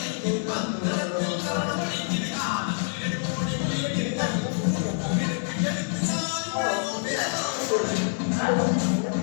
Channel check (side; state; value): right; silent; 61 dB below the other